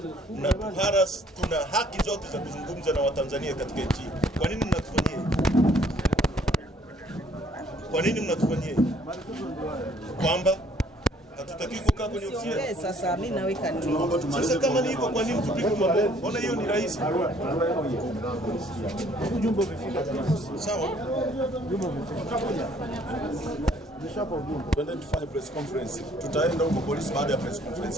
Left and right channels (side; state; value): both; normal; correlation 0.61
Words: mnatuharas, tuna haki zote za kuzungumza na Watanzania katika nchi. Kwa nini mnatufanyia hivi? Kwa nini mnatufanyia hivi? Kwamba hatutaki kukaa kwenye ofisi yetu. Sasa mimi naweka nini? Sasa kama ni hivyo, kwa nini tupige mabomu? Mbona hiyo ni rahisi? Ujumbe umefika. Sawa. Ujumbe umefika. Twende tufanye press conference. Tutaenda huko polisi baada ya press